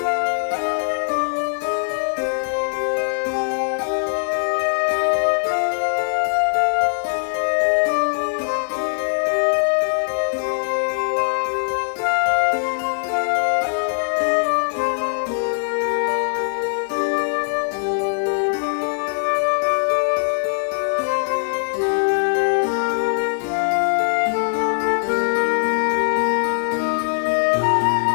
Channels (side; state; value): right; silent; 65 dB below the other